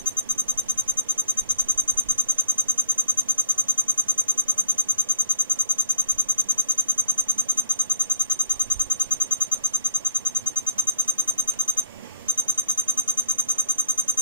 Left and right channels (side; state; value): both; inverted; correlation -0.48